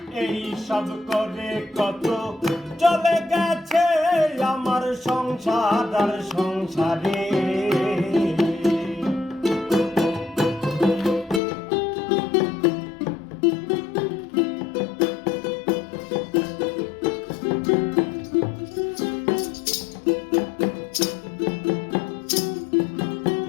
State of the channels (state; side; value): drops out; right; at 11.4 s